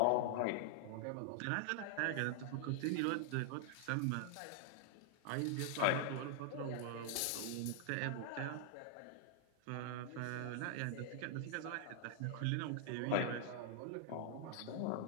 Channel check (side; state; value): both; different; correlation 0.00